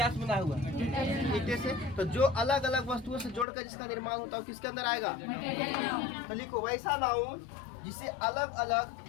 से बना हुआ है? ईटे से। तो जो अलग अलग वस्तुओं से जोड़कर जिसका निर्माण होता है वो किसके अंदर आएगा? तो लिखो वैसा नाउन जिसे अलग अलग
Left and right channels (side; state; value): right; drops out; at 3.5 s